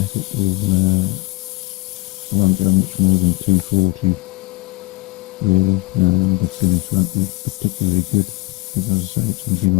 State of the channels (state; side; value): quieter; right; 21.5 dB